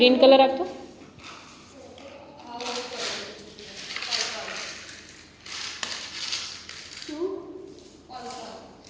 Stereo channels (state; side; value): identical; both; correlation 1.00